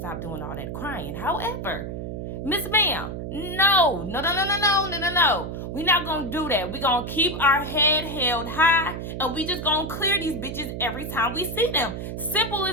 doing all that crying? However, Miss Ma'am, no. We're not going to do that. We're going to keep our head held high, and we just going to clear these bitches every time we see them. Simple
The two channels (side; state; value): right; noise; hum, 6 dB below the sound